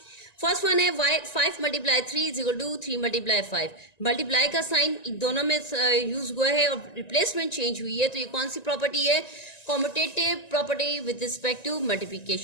फर्स्ट वन है 5 multiply 3 is equal to 3 multiply 5। Multiply का साइन दोनों में यूज हुआ है और रिप्लेसमेंट चेंज हुई है, तो ये कौन सी प्रॉपर्टी है, commutative property with respect to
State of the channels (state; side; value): late; right; 1.9 ms